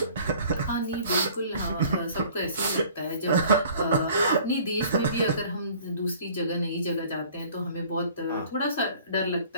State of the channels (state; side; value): inverted; both; correlation -0.51